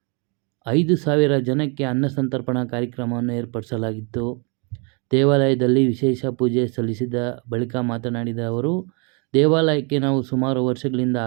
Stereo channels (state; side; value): quieter; left; 34.2 dB